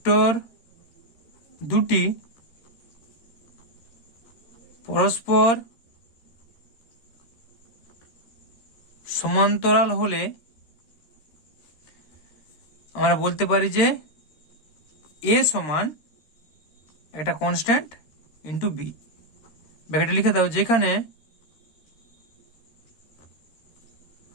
দুটি পরস্পর সমান্তরাল হলে আমরা বলতে পারি যে এ সমান একটা কনস্ট্যান্ট ইন্টু বি, ব্র্যাকেটে লিখে দাও, যেখানে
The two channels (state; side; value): late; right; 13 ms